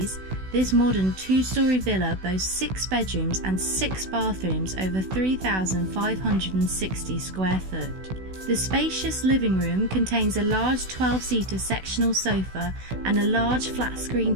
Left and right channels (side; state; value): left; late; 16 ms